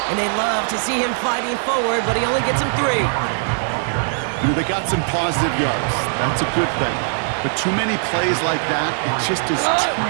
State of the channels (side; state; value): left; silent; 62 dB below the other